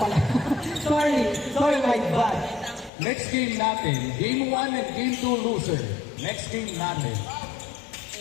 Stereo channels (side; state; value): right; drops out; at 2.9 s